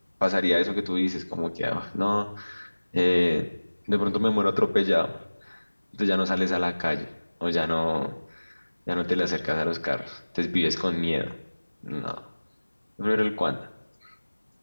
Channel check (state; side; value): inverted; both; correlation -1.00